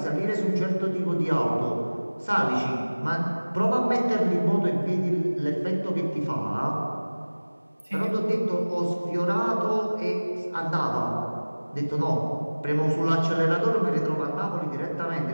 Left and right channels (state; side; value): inverted; both; correlation -1.00